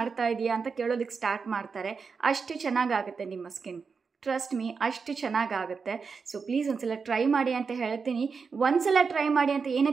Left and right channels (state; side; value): quieter; left; 5.3 dB